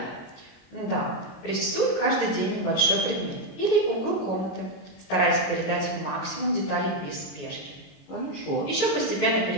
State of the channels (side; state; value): right; late; 21 ms